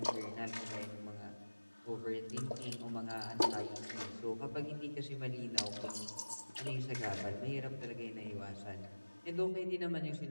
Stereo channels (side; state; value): both; inverted; correlation -1.00